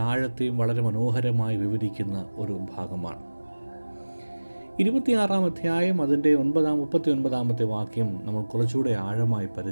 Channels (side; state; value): both; inverted; correlation -1.00